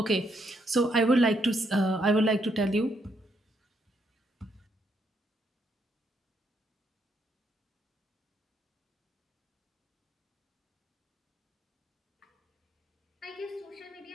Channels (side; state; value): both; normal; correlation 0.75